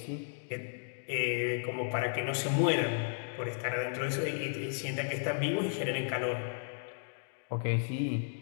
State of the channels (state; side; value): silent; right; digital silence